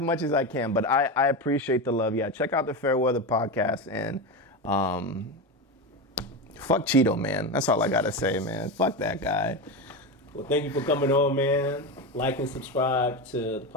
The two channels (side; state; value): both; normal; correlation 0.18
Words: as I can, but I appreciate the love. Yeah, check out the Fairweather Podcast, and fuck Cheeto, man. That's all I gotta say, man. Fuck that guy. Well, thank you for coming on, man. Like and subscribe to the